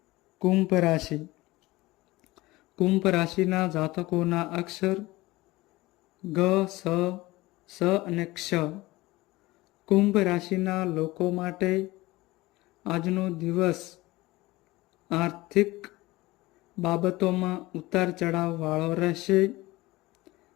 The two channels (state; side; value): quieter; right; 19.9 dB